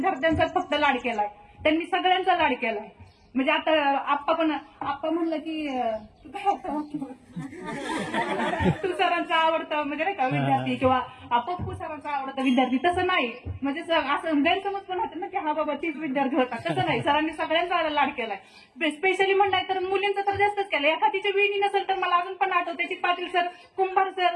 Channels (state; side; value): identical; both; correlation 1.00